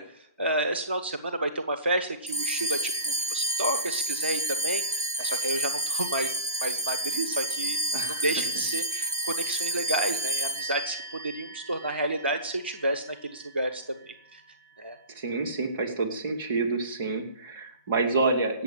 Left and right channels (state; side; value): inverted; both; correlation -0.37